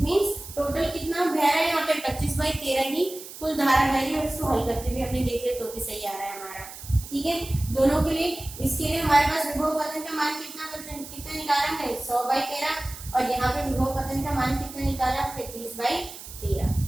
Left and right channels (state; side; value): noise; right; hiss, 14 dB below the sound